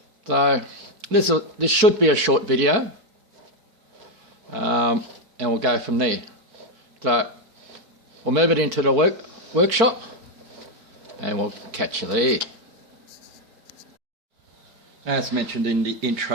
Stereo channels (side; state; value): left; late; 4.5 ms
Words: So this should be a short video. And we'll go from there. So we'll move it into the workshop and we'll catch you there. As mentioned in the